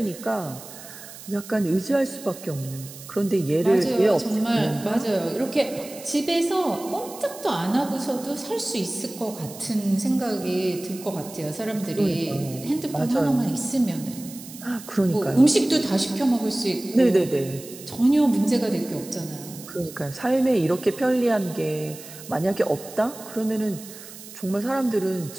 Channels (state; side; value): noise; right; hiss, 15 dB below the sound